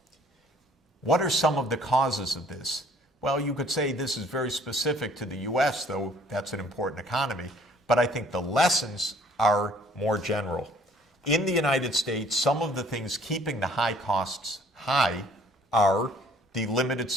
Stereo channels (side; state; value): both; normal; correlation 0.58